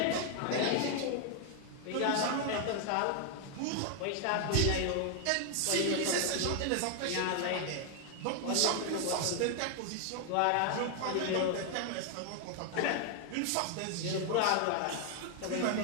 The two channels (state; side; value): different; both; correlation 0.00